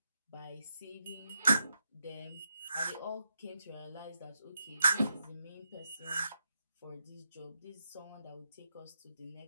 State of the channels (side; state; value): both; inverted; correlation -0.83